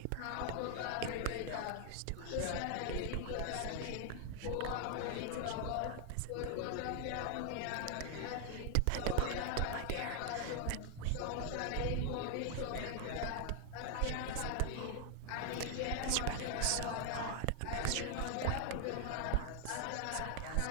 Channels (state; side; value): different; both; correlation 0.00